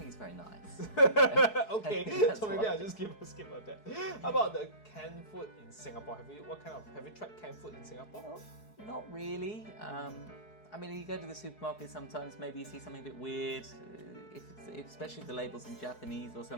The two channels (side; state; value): right; late; 4.7 ms